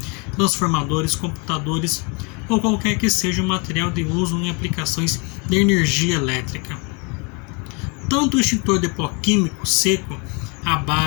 transformadores, computadores ou qualquer que seja o material de uso em aplicações de energia elétrica. Tanto o extintor de pó químico seco à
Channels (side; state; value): right; quieter; 32.3 dB